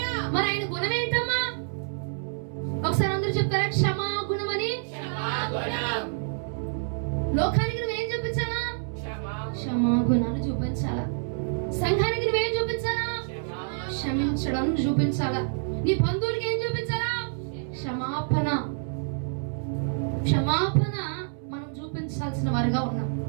మరి ఆయన గుణం ఏంటమ్మా? ఒకసారి అందరూ చెప్తారా? క్షమాగుణం అని. లోకానికి నువ్వేం చూపించాలా? క్షమాగుణాన్ని చూపించాలా. సంఘానికి నువ్వేం చూపించాలా? క్షమించడం చూపించాలా. నీ బంధువులకి ఏం చూపించాలా? క్షమాపణ. క్షమాపణ మనం చూపించాల్సిన వారుగా ఉన్నాం.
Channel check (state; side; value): silent; left; 59 dB below the other